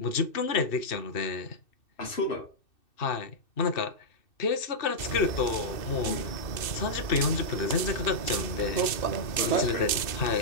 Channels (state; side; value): late; right; 2.6 ms